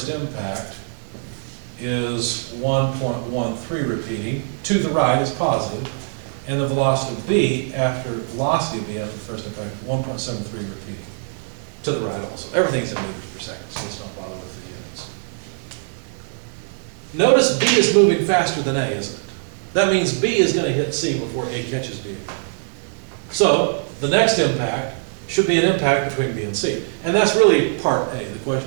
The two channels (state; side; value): silent; left; 64 dB below the other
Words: impact is 1.13 repeating. To the right is positive. And the velocity of B after the first impact, 1.73 repeating. To the right also. Everything's in meters per second, so let's not bother with the units. Notice B is moving faster than A, isn't it? That means B is going to hit C before A catches B. So the next impact should be an impact between B and C. And that's really part A. The